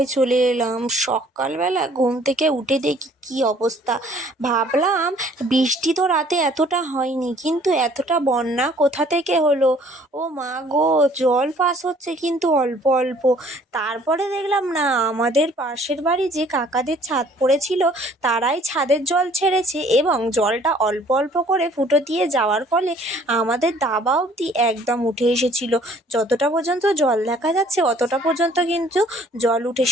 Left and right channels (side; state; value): both; normal; correlation 0.57